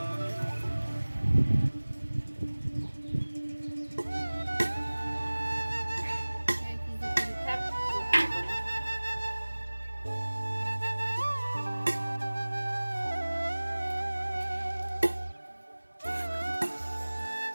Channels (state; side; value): inverted; both; correlation -1.00